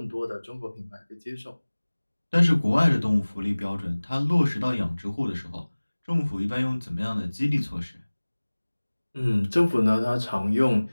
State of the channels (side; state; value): both; inverted; correlation -1.00